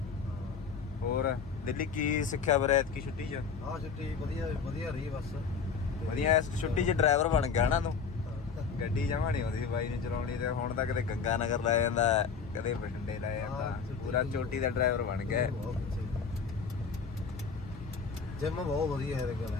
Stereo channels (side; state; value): right; quieter; 5.8 dB